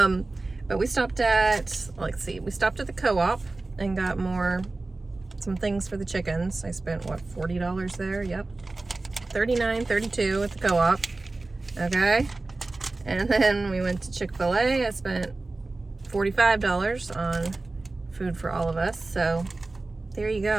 we stopped at, we stopped at the co-op and got some things for the chickens. I spent, what, $40 there? Yep. $39, $32 at the co-op. Okay. And then we went to Chick-fil-A. I spent $45 on food for all of us. So there you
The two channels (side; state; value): left; quieter; 3.3 dB